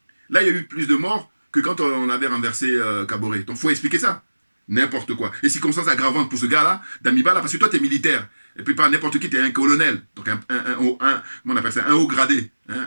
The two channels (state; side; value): inverted; both; correlation -1.00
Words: là, il y a eu plus de morts que quand on avait renversé Kaboré. Donc, il faut expliquer ça. N'importe quoi. Et circonstances aggravantes pour ce gars-là, Damiba, là, parce que toi, tu es militaire. Et puis, pas n'importe qui, tu es un colonel. Donc, comment on appelle ça, un haut gradé,